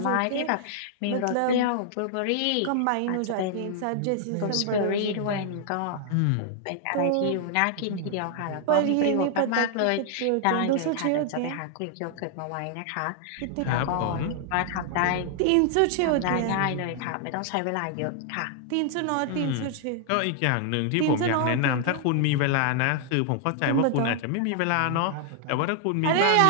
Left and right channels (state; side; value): different; both; correlation 0.00